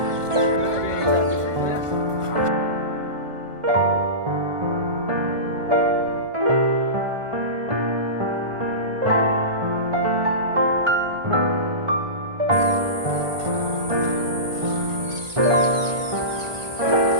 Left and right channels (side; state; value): left; late; 1.3 ms